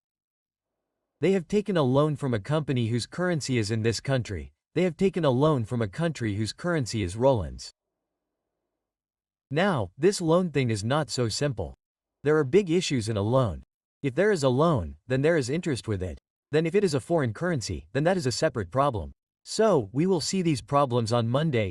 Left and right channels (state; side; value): identical; both; correlation 1.00